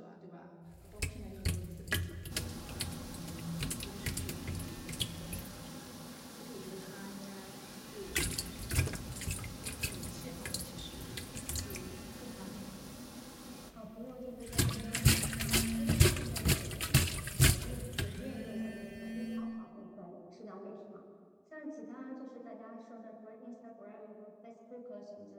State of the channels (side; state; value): both; identical; correlation 1.00